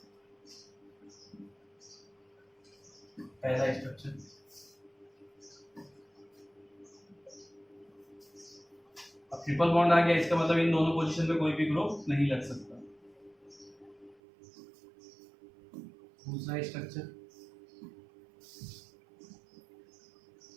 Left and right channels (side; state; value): left; drops out; at 14.2 s